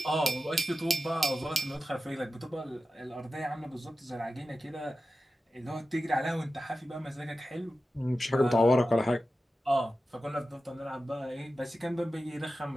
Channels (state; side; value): normal; both; correlation 0.93